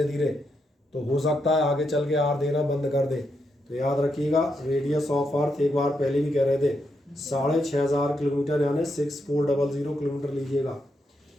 धीरे, तो हो सकता है आगे चल के आर देना बंद कर दे। तो याद रखिएगा, रेडियस ऑफ अर्थ एक बार पहले भी कह रहे थे 6500 किलोमीटर, यानी 6400 किलोमीटर लीजिएगा।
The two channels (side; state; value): both; normal; correlation 0.82